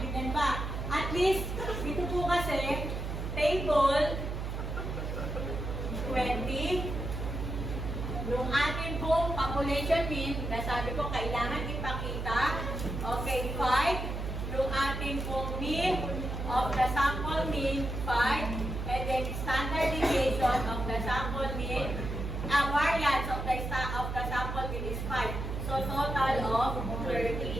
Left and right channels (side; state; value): right; noise; hum, 4 dB below the sound